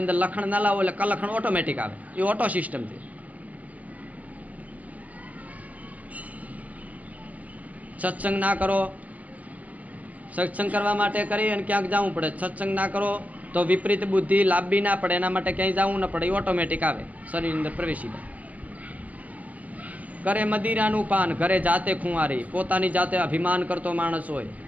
અંદર લખણ ના લાવો એટલે કલખણ ઓટોમેટિક આવે. એ ઓટો સિસ્ટમ છે. સત્સંગ ના કરો, સત્સંગ કરવા માટે કરી અને ક્યાંક જવું પડે. સત્સંગ ના કરો તો વિપરીત બુદ્ધિ લાભી ના પડે, એના માટે ક્યાંય જવું ન પડે, એ ઓટોમેટિક આવે, શરીરની અંદર પ્રવેશી જાય. કરે મદિરાનું પાન, ઘરે જાતે ખુંવારી, પોતાની જાતે અભિમાન કરતો માણસ હોય.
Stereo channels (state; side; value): late; left; 0.072 ms